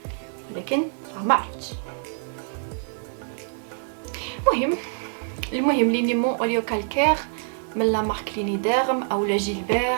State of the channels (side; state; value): left; silent; digital silence